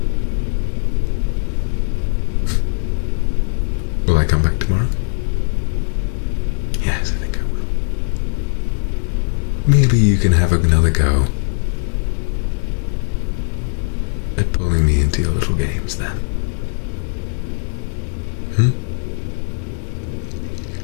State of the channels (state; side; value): silent; right; 63 dB below the other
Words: Will I come back tomorrow? Yes, I think I will. Maybe you can have another go at pulling me into your little games then.